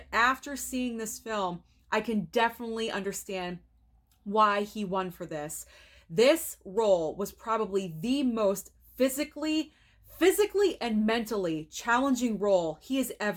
after seeing this film, I can definitely understand why he won for this. This role was probably the most physically and mentally challenging role he has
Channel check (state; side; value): identical; both; correlation 1.00